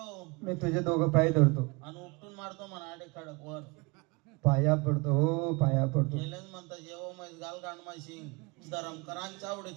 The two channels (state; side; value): quieter; left; 27.3 dB